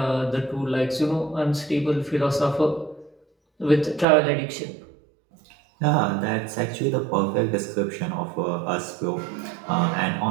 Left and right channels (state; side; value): drops out; left; at 4.0 s